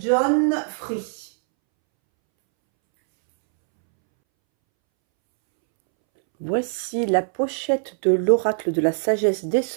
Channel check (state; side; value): silent; left; 64 dB below the other